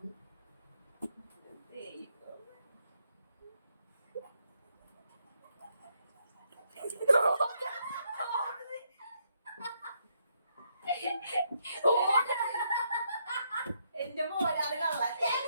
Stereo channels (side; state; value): both; inverted; correlation -0.76